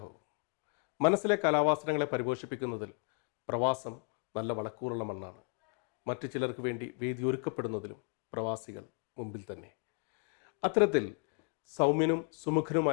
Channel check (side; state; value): right; quieter; 36.3 dB